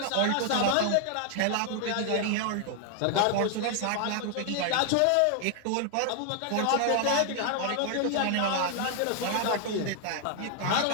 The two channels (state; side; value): different; both; correlation 0.00